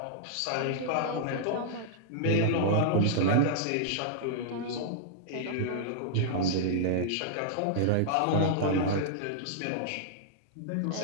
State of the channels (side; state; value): both; different; correlation -0.01